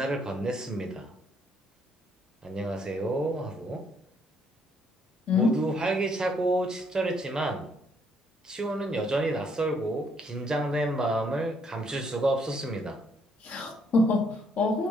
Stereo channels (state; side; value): normal; both; correlation 0.69